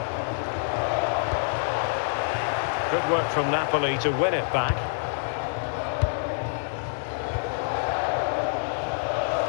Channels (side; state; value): right; silent; digital silence